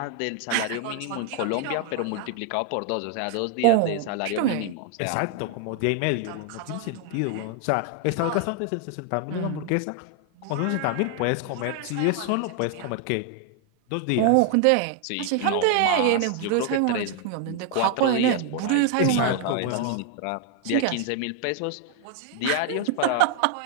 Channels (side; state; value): both; different; correlation 0.00